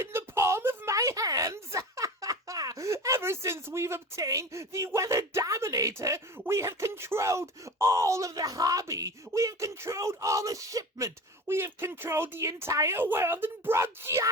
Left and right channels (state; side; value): normal; both; correlation 0.33